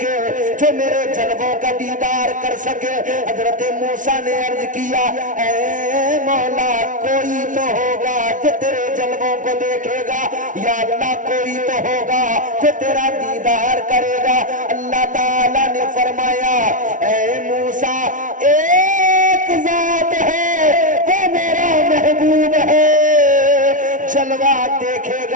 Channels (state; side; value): late; left; 0.38 ms